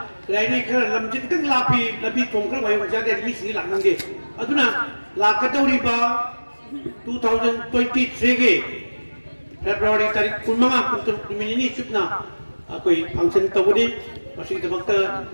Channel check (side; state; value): both; inverted; correlation -1.00